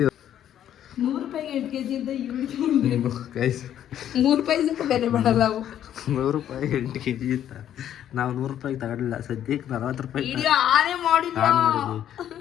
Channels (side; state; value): right; quieter; 10.7 dB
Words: 100 ರೂಪಾಯಿಗೆ 8 kg ಅಂತ ಇವ್ರಿಗೆ ಗೈಸ್ 3 ರೂಪಾಯಿ ಸ್ವಲ್ಪ ಬೆಲೆ ಮಾಡಲ್ಲ ಅವು. 100 ರೂಪಾಯಿ 8 kg ಇತ್ತ. ನಾವು 100 ರೂಪಾಯಿಗೆ ತಗೊಂಡಿಲ್ಲ, ಸದ್ಯಕ್ಕೆ 40 ರೂಪಾಯಿ ವಿಡಿಯೋ ಆನೆ ಮಾಡಿದ್ವಿ.